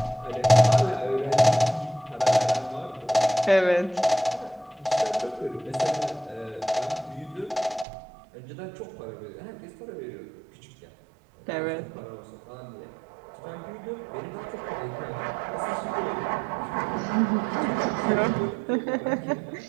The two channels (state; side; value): drops out; left; at 7.9 s